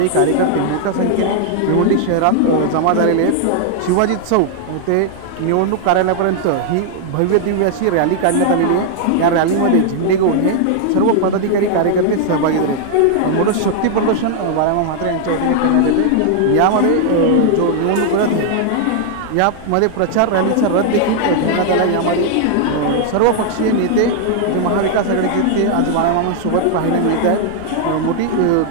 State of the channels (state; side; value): different; both; correlation 0.00